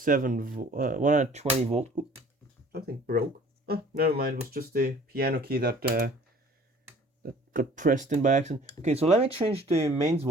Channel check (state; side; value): normal; both; correlation 0.51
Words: volt. Oops, something broke. Oh, never mind. It was just the piano key that got pressed in by accident. Okay, so let me change the mains